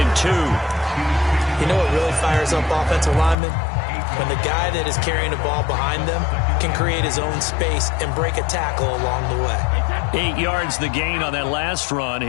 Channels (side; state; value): right; drops out; at 3.4 s